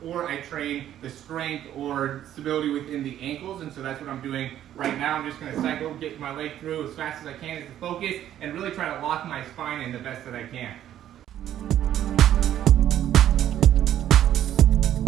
or I train the strength or stability within the ankles. And so that's what I'm doing right now. I'm just going to cycle, get my leg through as fast as I can as the focus, and really try to lock my spine in the best that I can.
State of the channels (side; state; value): left; quieter; 11.5 dB